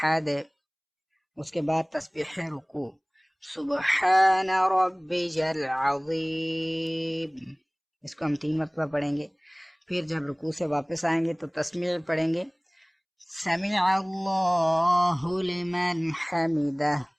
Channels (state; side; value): identical; both; correlation 1.00